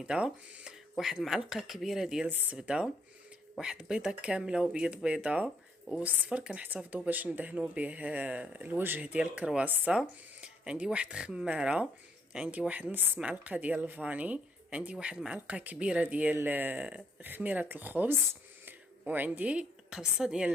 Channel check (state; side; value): normal; both; correlation 0.70